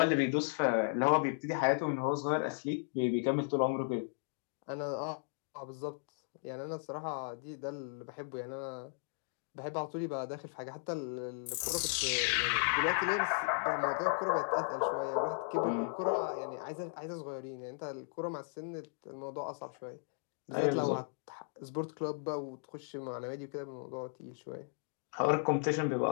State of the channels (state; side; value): silent; right; digital silence